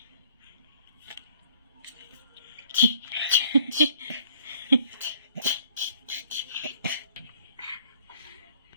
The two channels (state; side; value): inverted; both; correlation -0.58